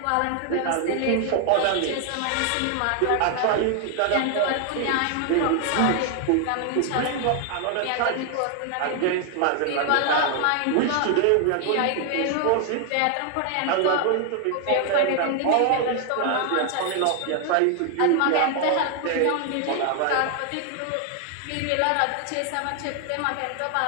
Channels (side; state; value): both; different; correlation 0.00